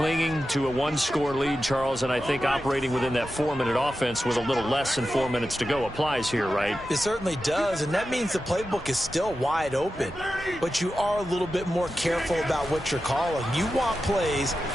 to a 1-score lead, Charles, and I think operating within that 4-minute offense with a little less than 4 minutes to go applies here, right? It certainly does, and that means the playbook is still wide open. But you are a little bit more careful about what you're calling. You want plays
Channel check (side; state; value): both; normal; correlation 0.92